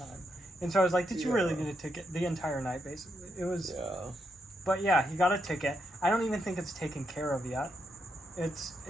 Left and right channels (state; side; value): normal; both; correlation 0.81